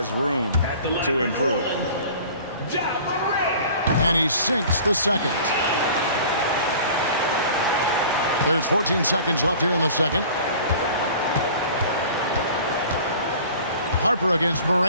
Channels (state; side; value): inverted; both; correlation -0.45